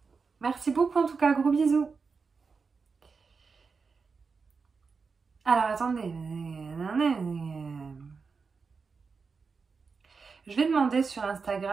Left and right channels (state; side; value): quieter; left; 5.0 dB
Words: Merci beaucoup, en tout cas. Gros bisous. Alors, attendez. Je vais demander sur